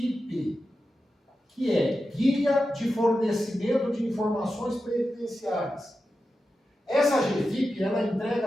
que é Guia de Fornecimento de Informações Previdenciárias. Essa GFIP, ela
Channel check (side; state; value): both; normal; correlation 0.91